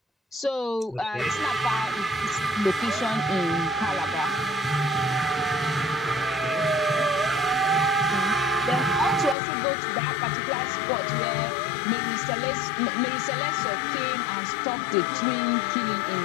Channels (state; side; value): drops out; right; at 9.3 s